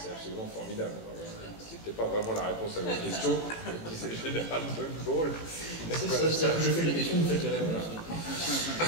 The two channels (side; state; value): right; late; 18 ms